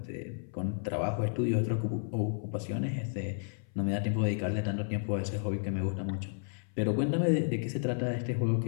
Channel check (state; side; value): silent; right; 56 dB below the other